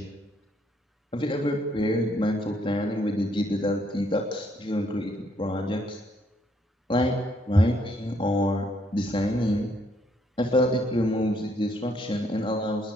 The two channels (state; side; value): normal; both; correlation 0.70